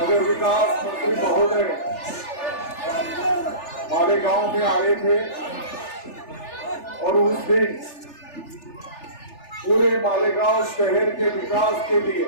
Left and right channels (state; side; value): late; right; 3.4 ms